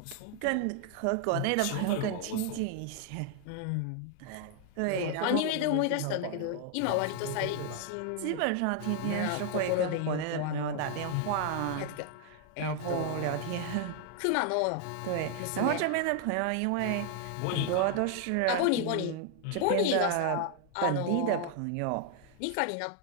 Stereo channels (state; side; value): different; both; correlation 0.00